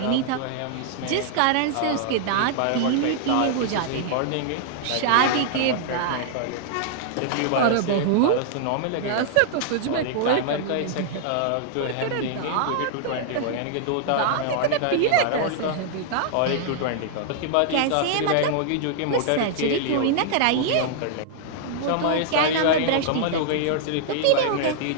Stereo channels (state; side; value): different; both; correlation -0.01